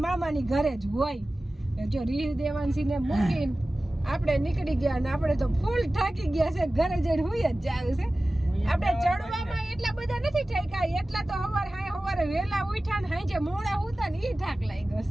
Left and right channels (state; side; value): normal; both; correlation 0.96